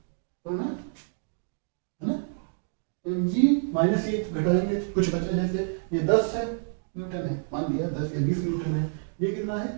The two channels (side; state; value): left; silent; digital silence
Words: तो ना है ना। एम जी माइनस ये घटाएंगे, कुछ बचा, जैसे ये 10 है न्यूटन है, मान लिया 10 या 20 न्यूटन है, ये कितना है